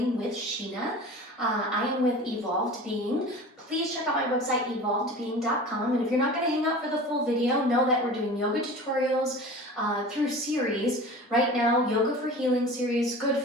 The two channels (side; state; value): both; normal; correlation 0.37